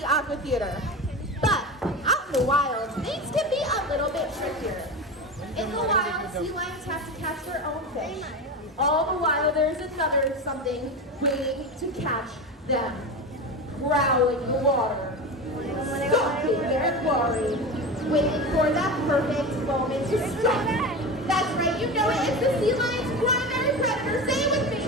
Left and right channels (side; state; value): both; normal; correlation 0.25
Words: Aqua Theater. But out in the wild, things can be a little bit trickier. In the wild, sea lions have to catch their own fish. All the while, there's another something waiting to catch them. Prowling the water, stalking their quarry, waiting for that perfect moment to strike. That's right, you know it. It's the sea lion's primary predator. Say it with me.